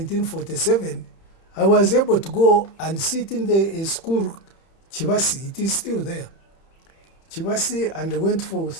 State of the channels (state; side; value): late; right; 31 ms